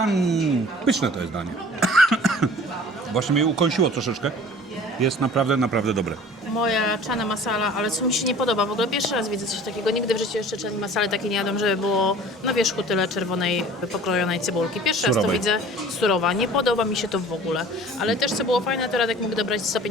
pyszne to jest danie. Właśnie mnie ukąsiło troszeczkę. Jest naprawdę dobre. Moja chana masala, ale co mi się nie podoba, w ogóle pierwszy raz widzę coś takiego, nigdy w życiu jeszcze chani masala takiej nie jadłam, żeby było na wierzchu tyle czerwonej, pokrojonej cebulki. Pierwszy raz to Surowej. widzę, surowa, nie podoba mi się to w ogóle. Ale też co było fajne, to Radek mógł dobrać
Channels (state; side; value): normal; both; correlation 0.46